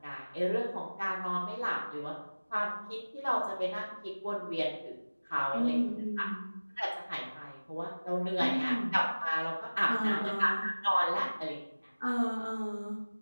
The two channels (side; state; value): both; inverted; correlation -1.00